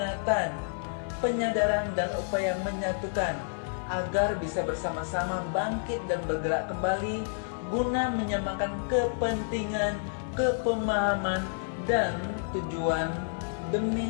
penyadaran dan upaya menyatukan agar bisa bersama-sama bangkit dan bergerak kembali guna menyamakan kepentingan, kepemahaman, dan tujuan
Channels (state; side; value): silent; right; 58 dB below the other